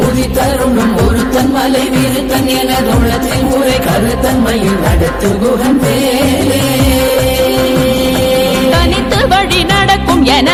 உதித்தருணும் ஒருத்தன் மலை விருத்தன் என தோளத்தில் உரை கருத்தன்மையில் நடத்து குகன் வேலே தனித்து வழி நடக்கும்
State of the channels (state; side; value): identical; both; correlation 1.00